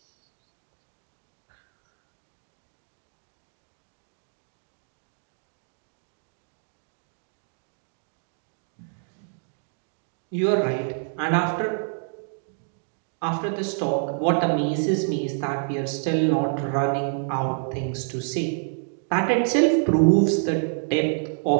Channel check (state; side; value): silent; left; 60 dB below the other